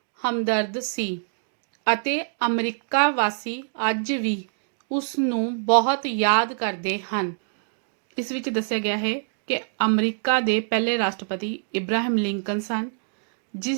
ਹਮਦਰਦ ਸੀ ਅਤੇ ਅਮਰੀਕਾ ਵਾਸੀ ਅੱਜ ਵੀ ਉਸ ਨੂੰ ਬਹੁਤ ਯਾਦ ਕਰਦੇ ਹਨ। ਇਸ ਵਿੱਚ ਦੱਸਿਆ ਗਿਆ ਹੈ ਕਿ ਅਮਰੀਕਾ ਦੇ ਪਹਿਲੇ ਰਾਸ਼ਟਰਪਤੀ ਇਬਰਾਹਿਮ ਲਿੰਕਨ ਸਨ,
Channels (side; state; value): left; silent; digital silence